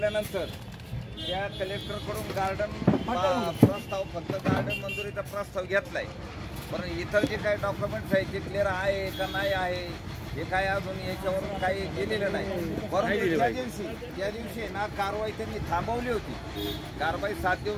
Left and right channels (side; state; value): both; identical; correlation 1.00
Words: त्या कलेक्टरकडून गार्डन प्रस्ताव फक्त गार्डन मंजुरीचा प्रस्ताव घेतलाय पण इतर जे काही डॉक्युमेंट्स आहेत ते क्लिअर आहे का नाही आहे हे काय अजून याच्यावरून काही गेलेलं नाही परंतु त्या दिवशी ना कारवाई त्यांनी थांबवली होती कारवाई 7